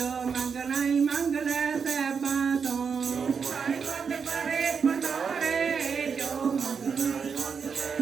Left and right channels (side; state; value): left; quieter; 6.1 dB